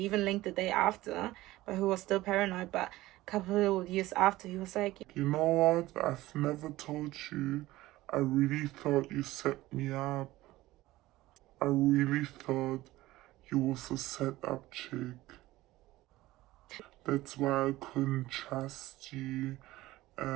linked the day after, but he was still paranoid. But a couple of years after, he was like, you know what? I've never told you. I really thought you set me up. I really thought you was a set-up chick. That's why I couldn't trust you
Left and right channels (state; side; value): quieter; left; 17.5 dB